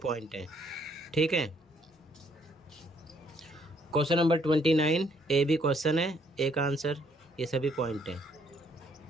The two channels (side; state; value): both; normal; correlation 0.67